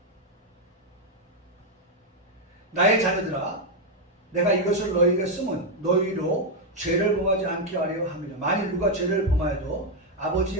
나의 자녀들아 내가 이것을 너희에게 쓰면 너희로 죄를 범하지 않게 하려 함이라. 만일 누가 죄를 범하여도 아버지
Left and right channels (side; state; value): both; normal; correlation 0.02